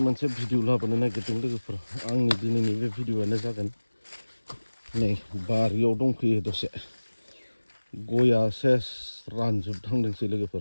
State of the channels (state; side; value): inverted; both; correlation -1.00